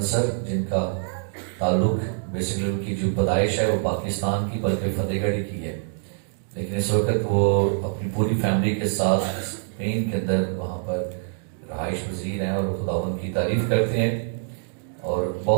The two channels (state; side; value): silent; left; digital silence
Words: سر, جن کا تعلق بیسیکلی ان کی جو پیدائش ہے وہ پاکستان کی بلکہ فتح گڑھ کی ہے, لیکن اس وقت وہ اپنی پوری فیملی کے ساتھ اسپین کے اندر وہاں پر رہائش پذیر ہیں اور خداوند کی تعریف کرتے ہیں. اور